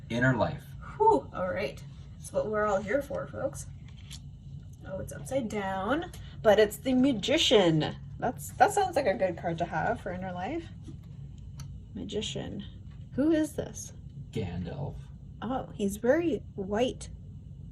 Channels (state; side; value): identical; both; correlation 1.00